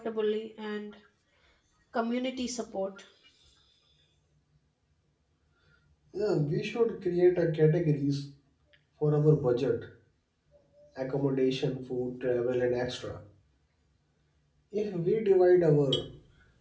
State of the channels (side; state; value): both; identical; correlation 1.00